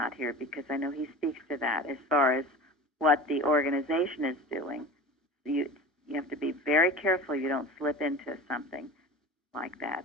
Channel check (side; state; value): both; normal; correlation 0.35